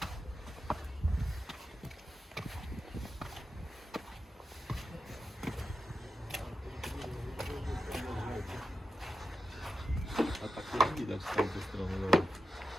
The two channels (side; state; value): both; normal; correlation 0.89